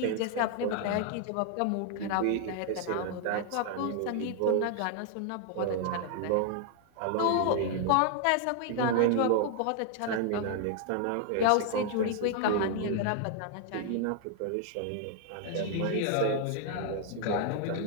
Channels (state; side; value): different; both; correlation 0.00